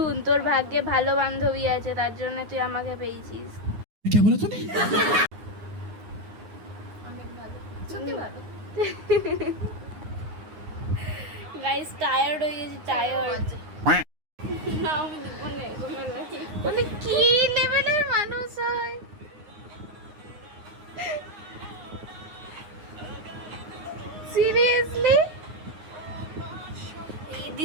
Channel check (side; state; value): left; late; 9.7 ms